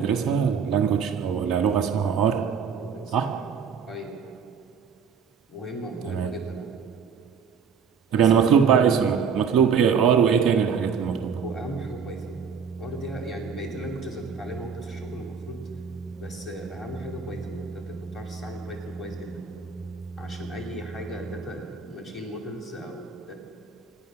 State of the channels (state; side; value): quieter; left; 6.5 dB